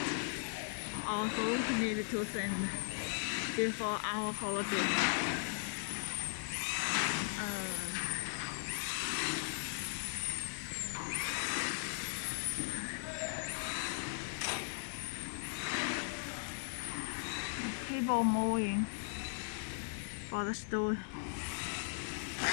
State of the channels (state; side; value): silent; right; digital silence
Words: also need to send before our holiday. Cable moving for the store.